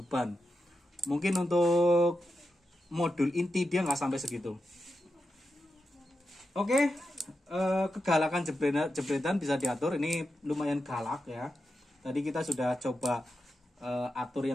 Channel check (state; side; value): normal; both; correlation 0.88